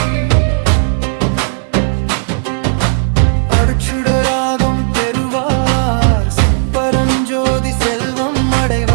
அருட்சுடராகம் பெறுவார் சிப்பரஞ்சோதி செல்வம்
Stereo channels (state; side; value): silent; left; digital silence